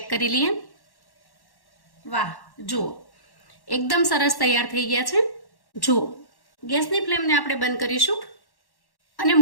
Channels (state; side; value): late; right; 1.1 ms